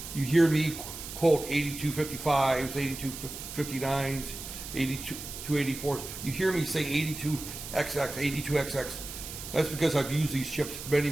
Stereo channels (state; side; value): noise; right; hiss, 10 dB below the sound